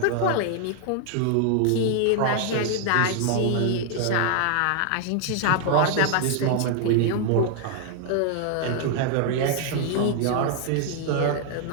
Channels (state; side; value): different; both; correlation 0.00